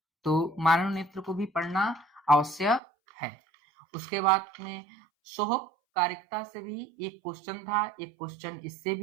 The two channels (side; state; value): left; drops out; at 2.8 s